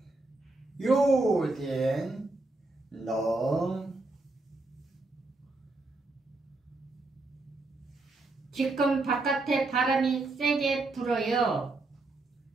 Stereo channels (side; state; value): left; quieter; 3.1 dB